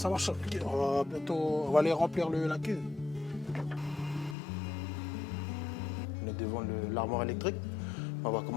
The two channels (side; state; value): right; drops out; at 4.4 s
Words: marche. On va bientôt. On va aller remplir la cuve. On est devant l'armoire électrique. On va